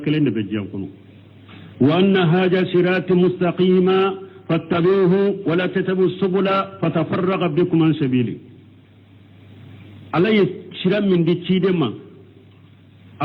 كلند بجيان كونو وأن هذا صراط مستقيما فاتبعوه ولا تتبعوا السبل فتفرق بكم عن سبيله على شرام من دي تشيدما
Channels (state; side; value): identical; both; correlation 1.00